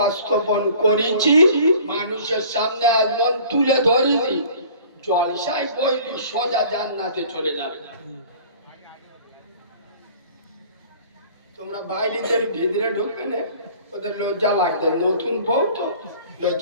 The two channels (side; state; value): both; inverted; correlation -0.49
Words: করেছি, মানুষের সামনে এমন তুলে ধরিনি, জলসায় বইলি সোজা জান্নাতে চলে যাবে। তোমরা বাইরেদের ভিতরে ঢুকবে না, ওদের লজ্জা লাগবে। নতুন বউ তো